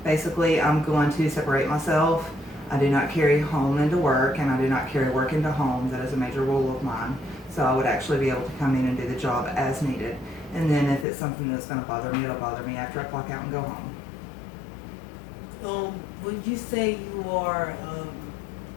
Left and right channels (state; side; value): drops out; right; at 11.1 s